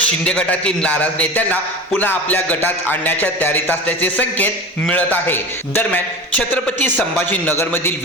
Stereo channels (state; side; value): normal; both; correlation 0.32